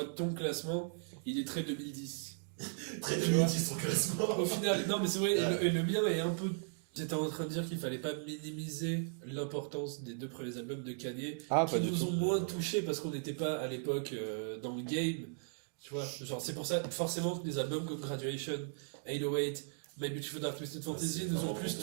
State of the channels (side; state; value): left; silent; digital silence